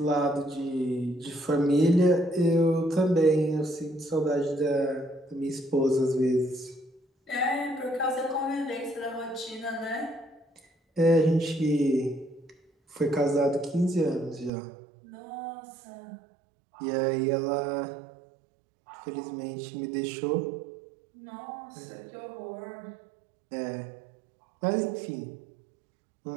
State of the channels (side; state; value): left; drops out; at 14.5 s